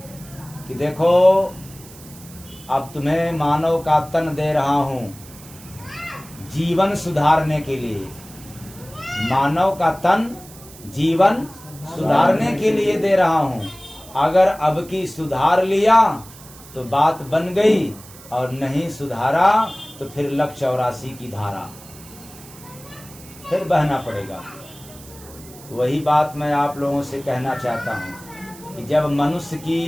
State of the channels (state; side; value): noise; right; hiss, 20 dB below the sound